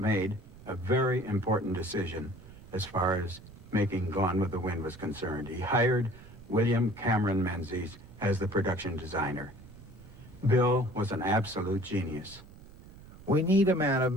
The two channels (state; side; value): noise; right; rumble, 19 dB below the sound